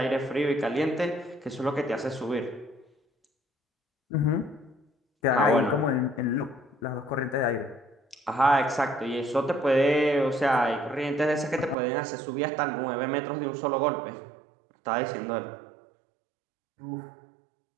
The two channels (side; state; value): left; drops out; at 11.8 s